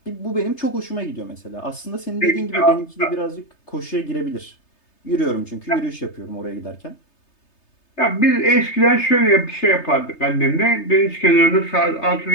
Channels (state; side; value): late; right; 3.3 ms